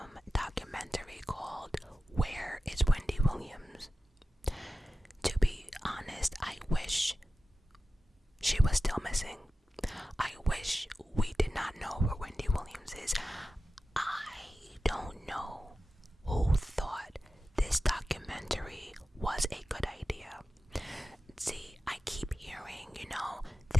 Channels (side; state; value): both; normal; correlation 0.94